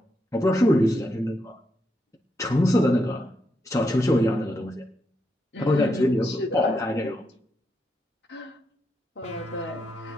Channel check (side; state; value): both; normal; correlation 0.82